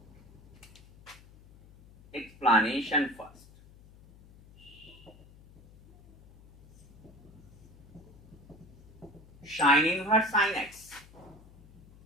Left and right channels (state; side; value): noise; left; hum, 23 dB below the sound